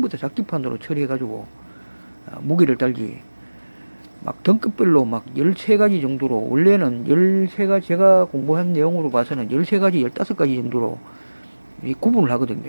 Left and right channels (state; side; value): inverted; both; correlation -1.00